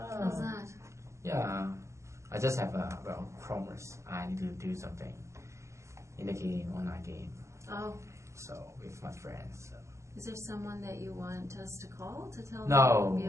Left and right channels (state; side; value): late; left; 0.14 ms